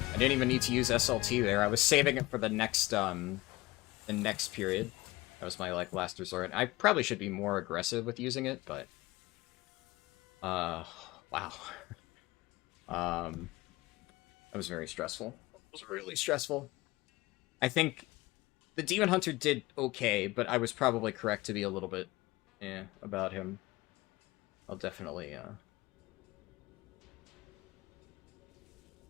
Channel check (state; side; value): quieter; right; 20.5 dB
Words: didn't even need to use SLT there. I was saving it for the next period. That was my, like, last resort. I probably should be more aggressive with using it, but... wow. That was very stressful. It was really stressful. I think the Demon Hunter did okay, but I was probably correct to be a little bit, about him. I'll definitely, yeah.